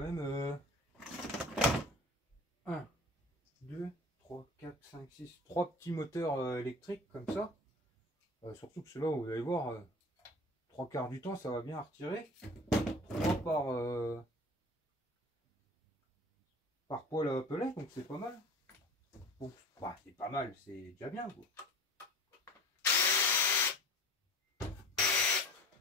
1, 2, 3, 4, 5, 6, 3 petits moteurs électriques comme ça. Surtout que ceux-là, vous allez voir, 3 quarts du temps, ça va bien retirer. 3 par poêle à pellet, donc c'est pas mal. Donc, bah, c'est pas mal, c'est déjà bien, quoi.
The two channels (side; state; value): both; normal; correlation 0.39